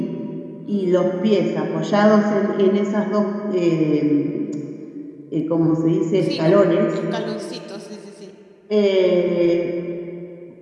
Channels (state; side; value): identical; both; correlation 1.00